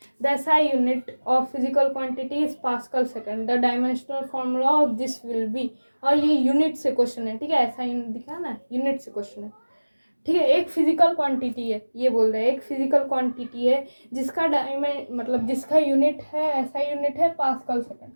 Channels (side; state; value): both; inverted; correlation -1.00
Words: The SI unit of physical quantity is pascal second, the dimensional formula of this will be. और ये यूनिट से क्वेश्चन है, ठीक है। ऐसा यूनिट दिखा ना, यूनिट से क्वेश्चन है, ठीक है। एक फिजिकल क्वांटिटी है, ये बोल रहे हैं एक फिजिकल क्वांटिटी है जिसका मतलब जिसका यूनिट है, ऐसा यूनिट है पास्कल सेकंड।